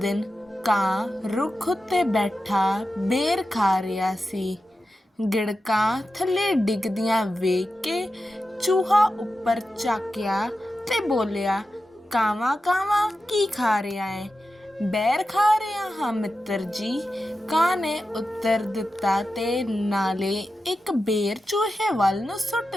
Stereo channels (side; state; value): both; normal; correlation 0.91